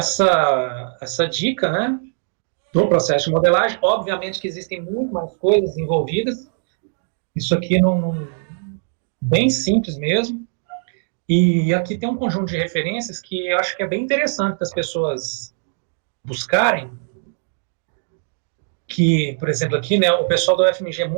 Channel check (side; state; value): left; silent; 65 dB below the other